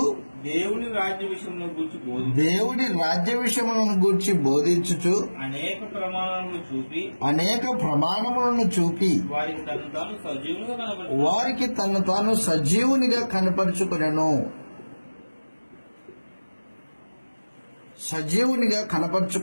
దేవుని రాజ్య విషయములను గూర్చి బోధించుచు అనేక ప్రమాణములను చూపి వారికి తను తాను సజీవునిగా కనపరుచుకొనెను. సజీవునిగా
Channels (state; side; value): inverted; both; correlation -1.00